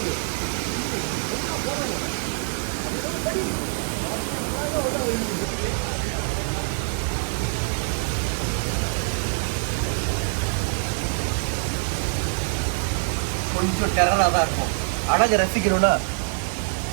கொஞ்சம் டெரரா தான் இருக்கும். அழகை ரசிக்கணும்னா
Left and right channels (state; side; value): silent; left; digital silence